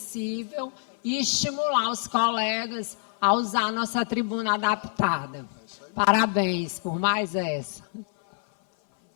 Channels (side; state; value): right; silent; 56 dB below the other